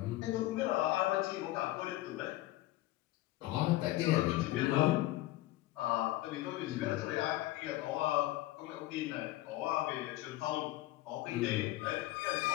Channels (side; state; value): right; quieter; 16.9 dB